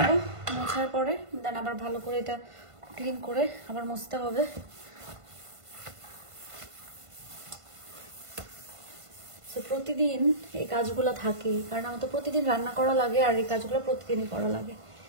মোছার পরে দেন আবার ভালো করে এটা ক্লিন করে আবার মুছতে হবে। প্রতিদিন এই কাজগুলো থাকে, কারণ আমার তো প্রতিদিন রান্না করা লাগে আর এই কাজগুলো প্রতিদিনই করা লাগে।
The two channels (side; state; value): left; late; 1.5 ms